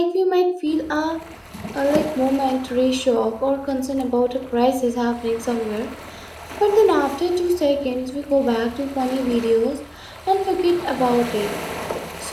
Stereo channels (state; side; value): identical; both; correlation 1.00